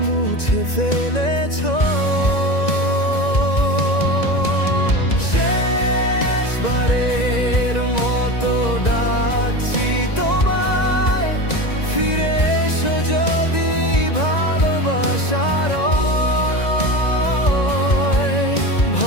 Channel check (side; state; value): right; late; 1.9 ms